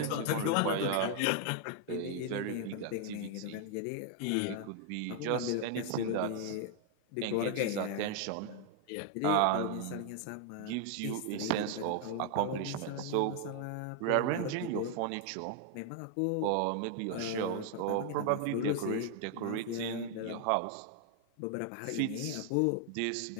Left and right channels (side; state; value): both; different; correlation 0.00